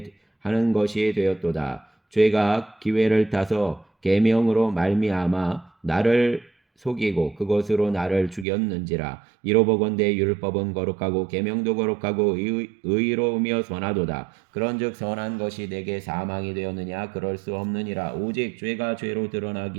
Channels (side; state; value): left; drops out; at 8.5 s